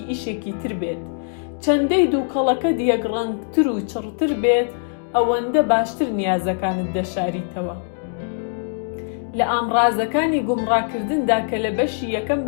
ئیشێکی تر بێت. چەندەی دووکەڵەکە دیەگڕەنگتر و چڕتر بێت، ئەوەندە باشتر نیازەکانت دەشاریتەوە. لە ئامڕازەکانی گومڕاکردندا کە لە بەشی یەکەم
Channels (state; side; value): silent; right; digital silence